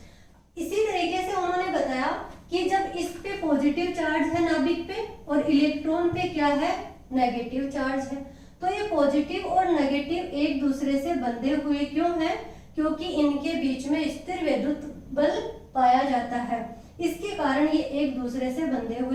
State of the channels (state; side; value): identical; both; correlation 1.00